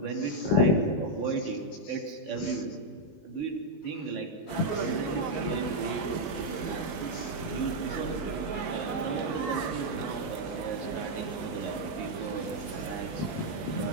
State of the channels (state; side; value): late; right; 19 ms